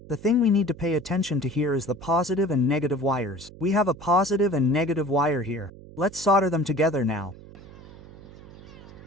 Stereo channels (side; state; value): right; noise; hum, 18 dB below the sound